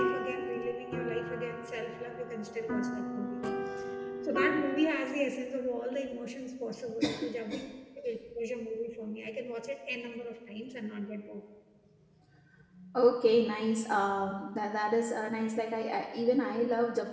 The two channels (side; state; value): both; identical; correlation 1.00